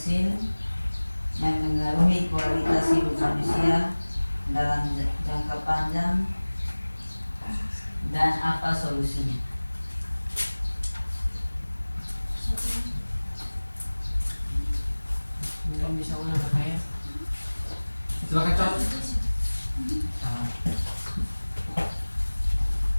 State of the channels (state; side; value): inverted; both; correlation -1.00